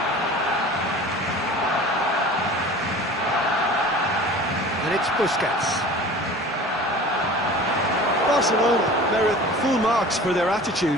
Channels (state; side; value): normal; both; correlation 0.41